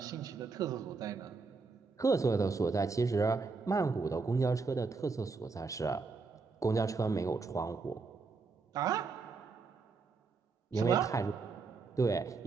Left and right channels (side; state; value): left; quieter; 4.4 dB